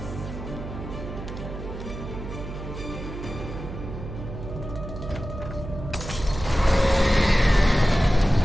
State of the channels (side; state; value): right; noise; hum, 9 dB below the sound